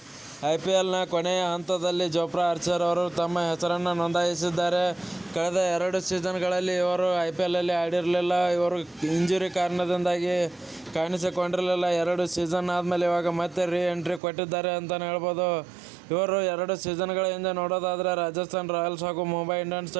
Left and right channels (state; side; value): drops out; left; at 14.2 s